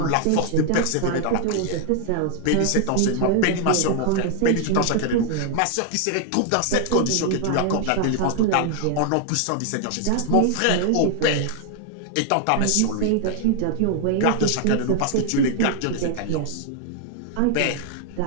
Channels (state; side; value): different; both; correlation 0.00